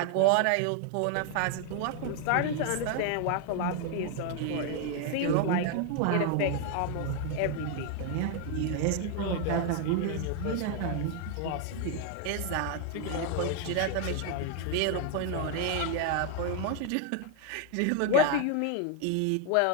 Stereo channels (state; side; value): different; both; correlation 0.00